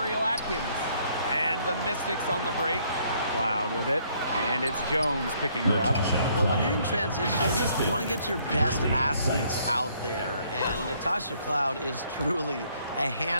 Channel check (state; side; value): inverted; both; correlation -0.66